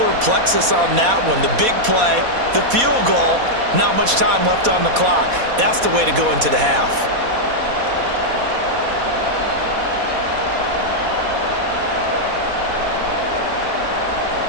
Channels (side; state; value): left; late; 4.1 ms